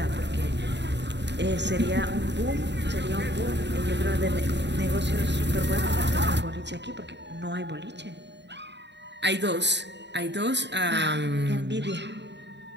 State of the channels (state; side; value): late; left; 0.51 ms